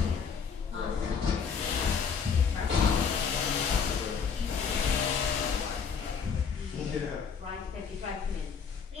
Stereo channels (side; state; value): right; quieter; 6.2 dB